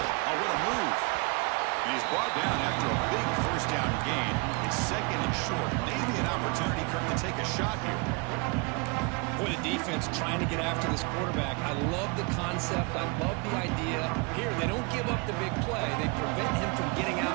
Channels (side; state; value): left; quieter; 30.6 dB